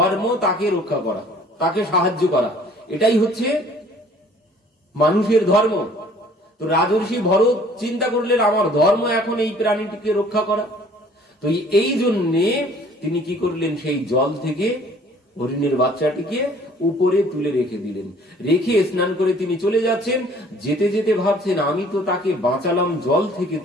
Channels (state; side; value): normal; both; correlation 0.55